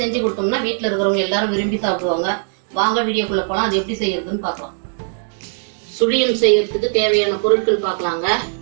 செஞ்சு கொடுத்தோம்னா வீட்டில் இருக்கிறவங்க எல்லாரும் விரும்பி சாப்பிடுவாங்க. வாங்க வீடியோக்குள்ள போகலாம். அது எப்படி செய்யறதுன்னு பார்க்கலாம். சுழியம் செய்யறதுக்கு தேவையான பொருட்கள் பார்க்கலாங்க.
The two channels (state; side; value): silent; left; digital silence